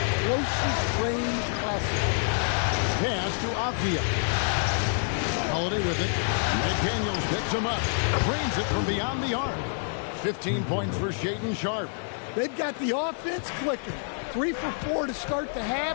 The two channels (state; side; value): silent; right; 60 dB below the other